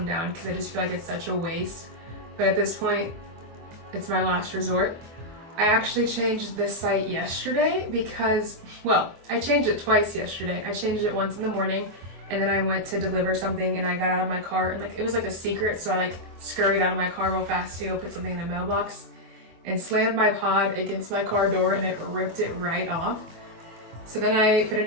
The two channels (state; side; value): late; left; 24 ms